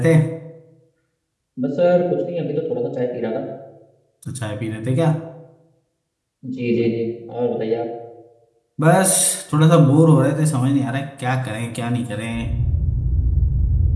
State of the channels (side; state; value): both; identical; correlation 1.00